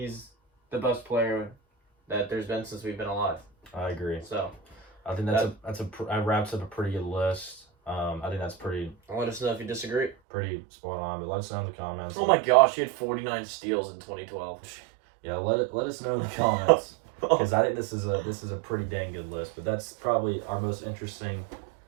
the best player that there's been since we've been alive. I agree. So I think that wraps up a pretty good list. I think that's pretty. Let us know if you disagree. Pretty spot on, but let us know in the comments. Oh my gosh, he had 49 steals in 2012. Yeah, let us know in the comments because I think this is a pretty dang good list. But that's probably our most interesting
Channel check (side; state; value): left; drops out; at 10.2 s